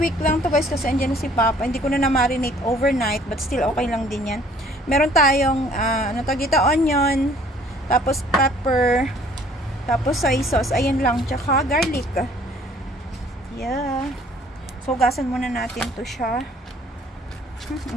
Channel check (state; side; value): normal; both; correlation 0.57